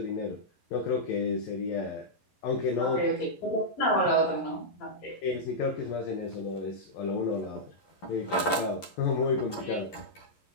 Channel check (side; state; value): right; late; 11 ms